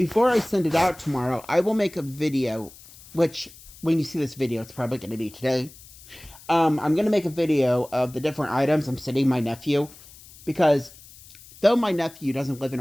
I send it out tomorrow, I will make a video, which when you see this video, it's probably going to be today. I'm going to make a video of the different items I'm sending my nephew, because though my nephew doesn't live in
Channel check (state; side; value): noise; left; hiss, 21 dB below the sound